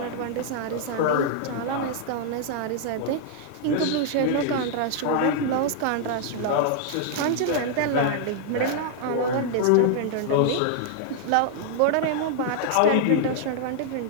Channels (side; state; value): both; different; correlation -0.01